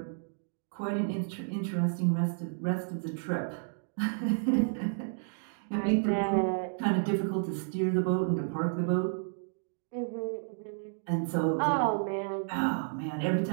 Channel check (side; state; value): left; silent; digital silence